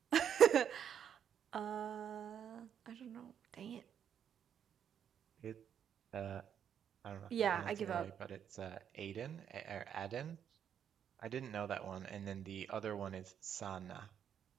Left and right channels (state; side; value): quieter; left; 8.7 dB